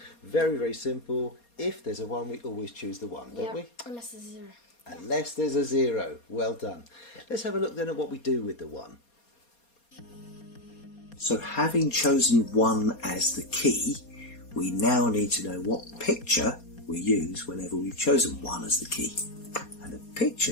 Very, very simple. If there's a 1, we always choose the 1, don't we? Unless there's a 0. Unless there's a 0. Well done. Let's have a look then at what we do with the 1. So having chosen 1 as the key, we now need to know what picture we use whenever we've chosen 1 as the key. And the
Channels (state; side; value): late; right; 4.2 ms